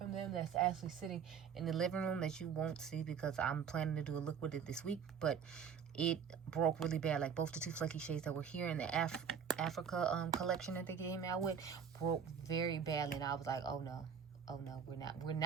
them that's actually sitting in the living room that you won't see, because I'm planning to do a look with it this week, but it broke really bad. Like, both the 2 flaky shades that were here in the Africa collection that they came out with broke very badly, and I was like, oh no, we're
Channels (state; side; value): quieter; left; 7.1 dB